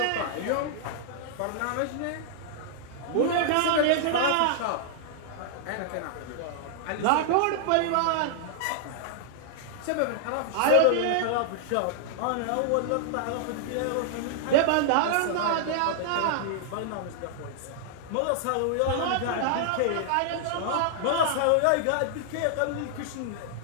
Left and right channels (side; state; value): both; different; correlation -0.01